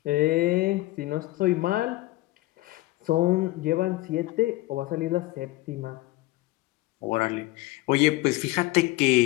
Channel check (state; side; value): quieter; right; 18.9 dB